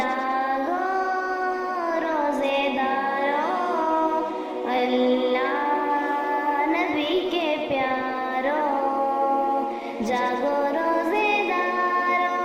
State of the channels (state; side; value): identical; both; correlation 1.00